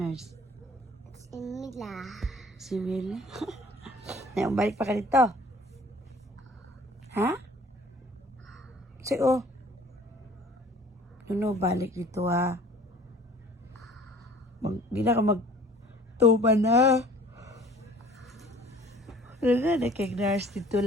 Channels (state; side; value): normal; both; correlation 0.50